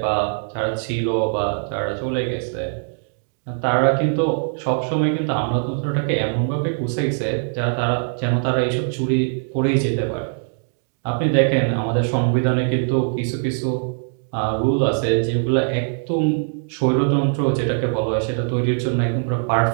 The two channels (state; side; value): silent; left; digital silence